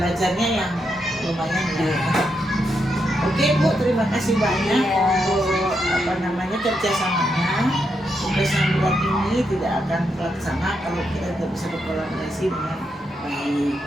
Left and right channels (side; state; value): both; normal; correlation 0.82